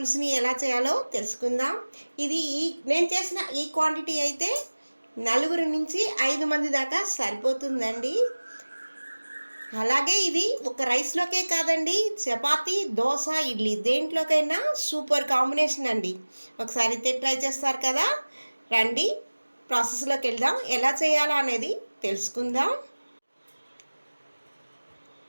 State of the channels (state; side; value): inverted; both; correlation -1.00